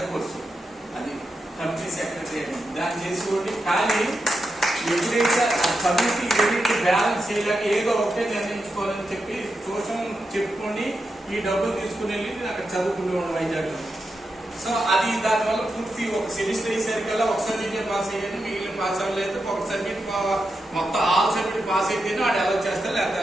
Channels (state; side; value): normal; both; correlation 0.87